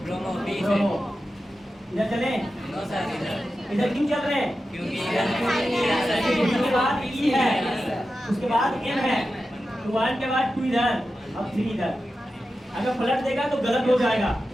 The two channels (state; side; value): normal; both; correlation 0.92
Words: ब्रोमो बी से। ब्रोमो। इधर चले? नो सर, इधर। इधर क्यों चल रहे हैं? क्योंकि उसके बाद ई है, उसके बाद एम है, तो 1 के बाद 2 इधर, अब 3 इधर। अगर पलट देगा तो गलत हो जाएगा।